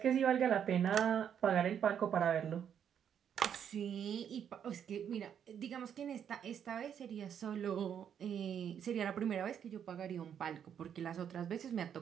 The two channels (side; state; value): left; quieter; 8.6 dB